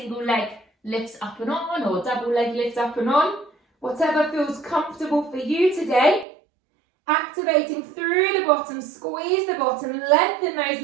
leg lifts up and on or double leg lift up and on. Whatever feels comfortable for you today. Activating through the bottom, squeeze the bottom, lengthen those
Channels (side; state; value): left; drops out; at 6.2 s